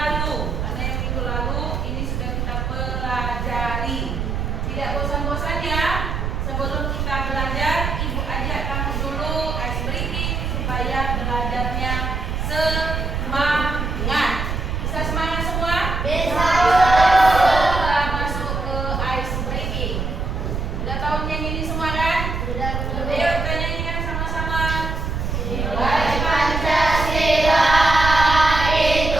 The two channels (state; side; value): noise; right; rumble, 2 dB below the sound